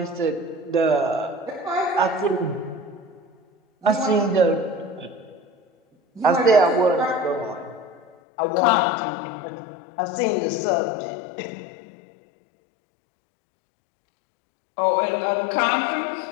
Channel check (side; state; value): right; drops out; at 8.1 s